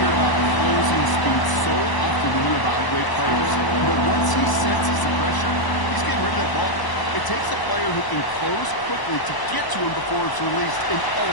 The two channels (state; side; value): late; right; 1.0 ms